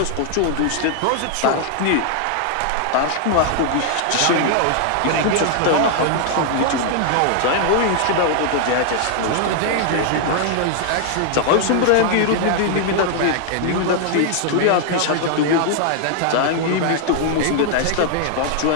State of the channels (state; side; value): different; both; correlation 0.00